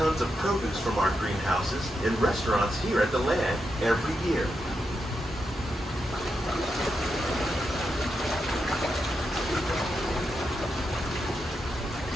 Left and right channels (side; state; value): both; normal; correlation 0.85